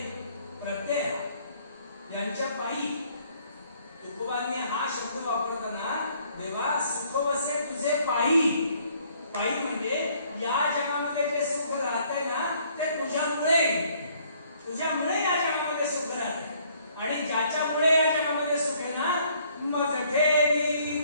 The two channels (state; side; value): inverted; both; correlation -0.63